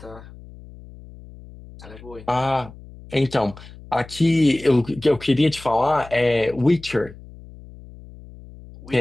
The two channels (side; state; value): left; noise; hum, 19 dB below the sound